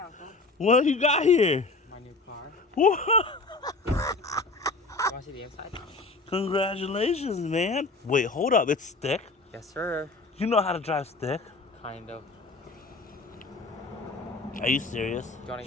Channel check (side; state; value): right; quieter; 3.6 dB